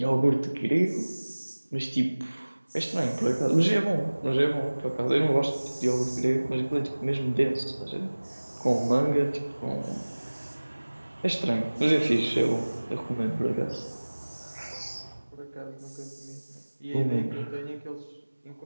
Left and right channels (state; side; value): inverted; both; correlation -1.00